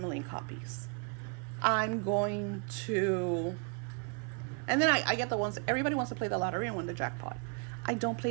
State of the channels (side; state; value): left; quieter; 37.6 dB